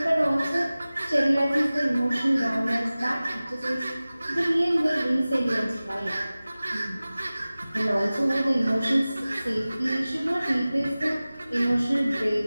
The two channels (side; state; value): both; inverted; correlation -0.97